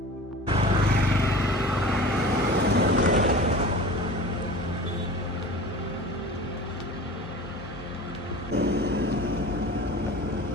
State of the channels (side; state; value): both; normal; correlation 0.38